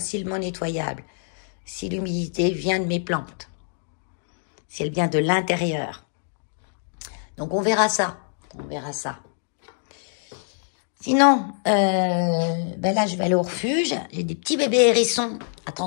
nettoyable. Si l'humidité vient de mes plantes. Si elle vient de l'intérieur. Donc on verra ça. On verra ça. Sinon, là je vais aller au refuge. J'ai des petits bébés hérissons à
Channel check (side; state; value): right; silent; digital silence